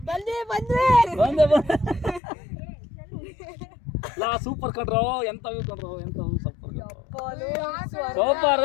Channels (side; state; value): right; drops out; at 2.2 s